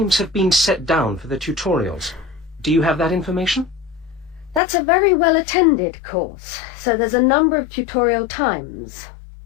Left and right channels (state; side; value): drops out; right; at 4.6 s